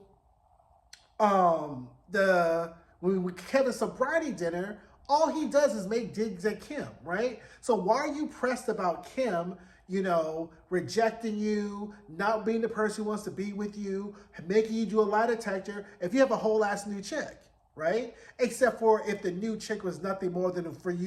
Kevin's sobriety dinner, all he does is make digs at Kim, right? So why are you pressed about Kim, rejecting you, not being the person who wants to be with you, making you do a lie detector if you have a whole ass new chick? Right? Except for if the new chick was nothing more than for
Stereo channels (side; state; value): both; identical; correlation 1.00